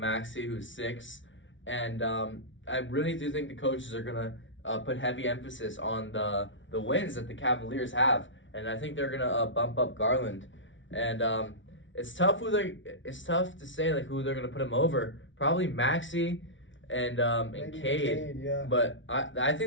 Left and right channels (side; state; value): right; late; 0.56 ms